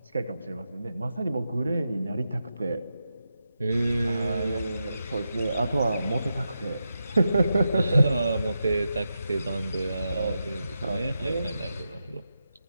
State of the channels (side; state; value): both; inverted; correlation -0.88